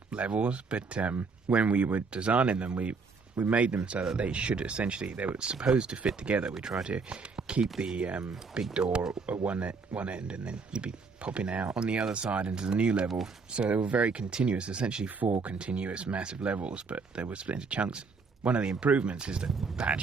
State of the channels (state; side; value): quieter; left; 4.6 dB